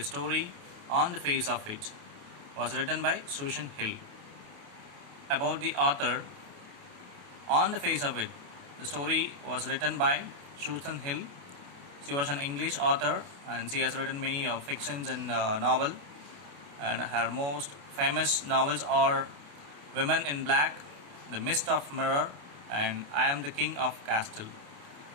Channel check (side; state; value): left; late; 28 ms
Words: story On the Face of It. It was written by Susan Hill. About the author, On the Face of It. The story was written by Susan Hill. She was an English author and she has written many fictions and novel. And her most famous novels are Women in Black, The Mist of Mirror, and I Am the King of Castle.